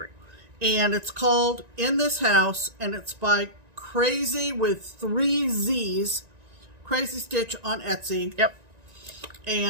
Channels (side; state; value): left; late; 1.9 ms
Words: And it's called In This House, and it's by Crazy with 3 Z's, Crazy Stitch on Etsy. Yep.